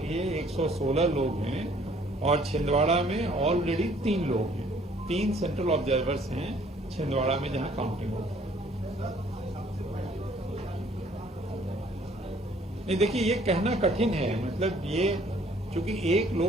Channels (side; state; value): both; normal; correlation 0.59